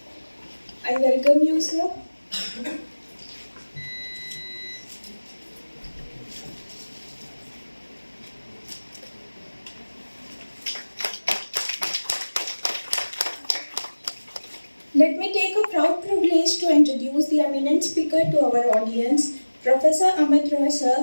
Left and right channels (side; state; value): both; inverted; correlation -1.00